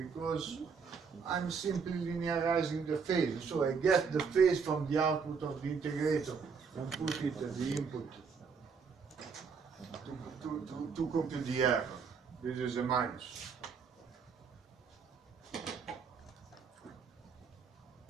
I'm simply linearizing the phase. So I get the phase from the output of the integrator and put it at the input to compute the error. This is a minus.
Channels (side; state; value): left; quieter; 5.7 dB